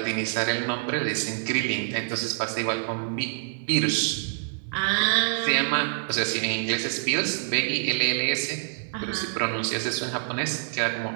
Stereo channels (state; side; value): silent; left; 56 dB below the other